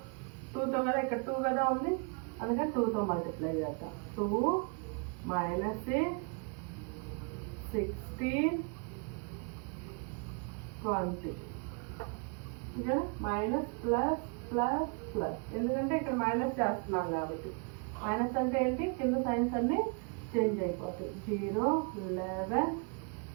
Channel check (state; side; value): quieter; left; 36.0 dB